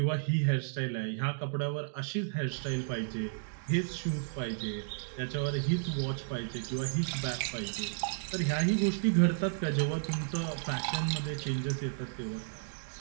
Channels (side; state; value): left; silent; digital silence